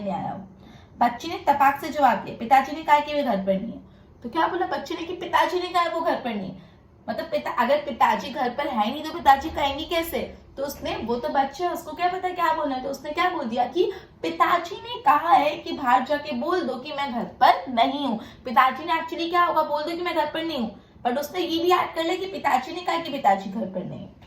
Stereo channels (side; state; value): both; identical; correlation 1.00